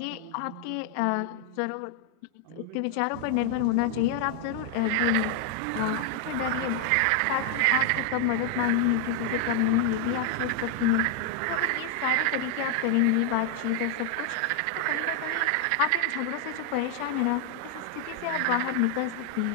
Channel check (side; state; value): both; different; correlation 0.00